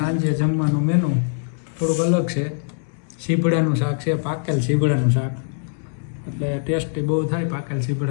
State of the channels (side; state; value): right; silent; 64 dB below the other